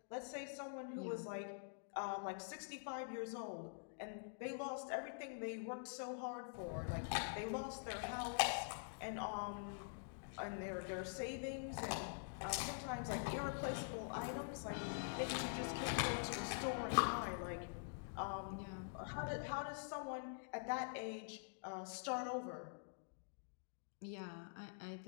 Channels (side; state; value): right; silent; digital silence